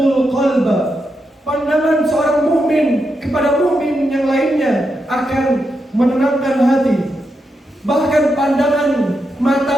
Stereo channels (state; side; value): normal; both; correlation 0.85